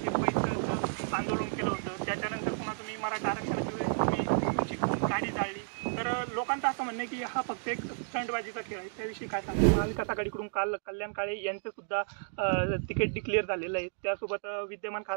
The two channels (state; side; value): silent; left; digital silence